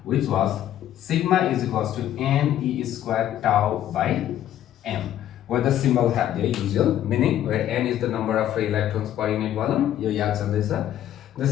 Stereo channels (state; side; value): quieter; right; 11.7 dB